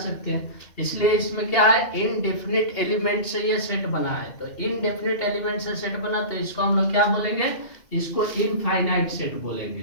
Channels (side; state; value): right; late; 2.8 ms